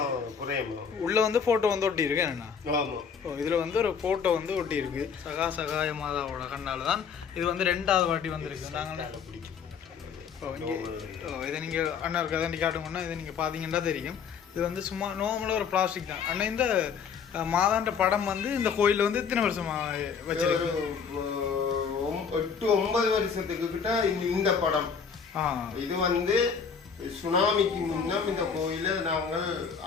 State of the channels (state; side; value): quieter; right; 6.4 dB